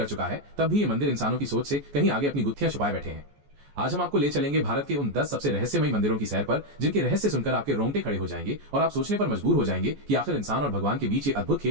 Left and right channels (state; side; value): late; left; 14 ms